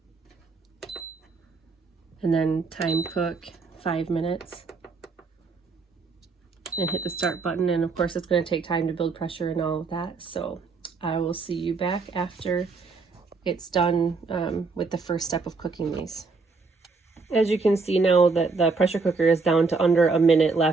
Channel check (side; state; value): left; quieter; 4.3 dB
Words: And then time cook 5 minutes and hit the start button. And of course it's going to take time to build pressure and all of that. So I will see you back after it's done with the first step of cooking these. As you can see now that the pressure cooker is down to under a minute